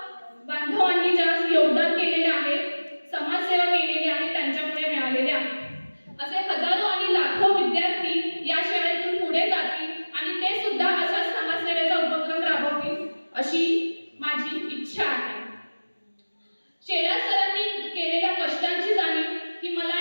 बांधवांनी ज्या योगदान केलेले आहे, समाजसेवा केलेली आहे, त्यांच्यामुळे मिळालेले आहे. असे हजारो आणि लाखो विद्यार्थी या शाळेतून पुढे जातील आणि ते सुद्धा अशा समाजसेवेचा उपक्रम राबवतील अशी माझी इच्छा आहे. शेलार सरांनी केलेल्या कष्टांची जाणीव ही मला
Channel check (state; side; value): inverted; both; correlation -1.00